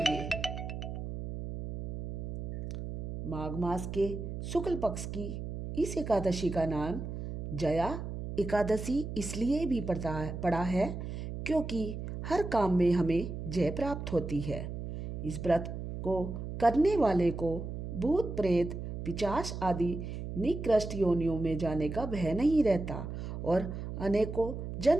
माघ मास के शुक्ल पक्ष की इस एकादशी का नाम जया एकादशी इसलिए भी पड़ा है क्योंकि हर काम में हमें जय प्राप्त होती है। इस व्रत को करने वाले को भूत प्रेत पिशाच आदि निकृष्ट योनियों में जाने का भय नहीं रहता और अनेकों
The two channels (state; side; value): noise; right; hum, 6 dB below the sound